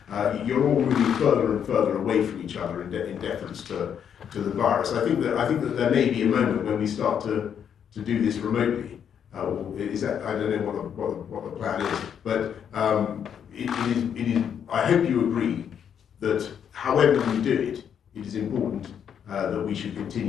You're all moving further and further away from each other in deference to the virus. I think that there may be a moment when we start to do this remotely. Is that, I don't know what the plan is, but it is. I hope you agree that however we do it, it is important that we should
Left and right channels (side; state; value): right; quieter; 8.3 dB